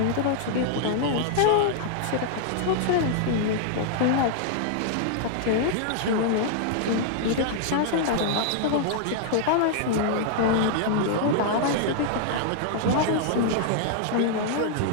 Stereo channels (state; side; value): different; both; correlation -0.01